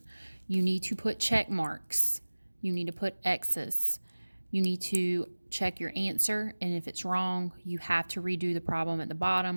You need to put check marks. You need to put X's. You need to check your answer, and if it's wrong, you have to redo the problem at the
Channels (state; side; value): inverted; both; correlation -1.00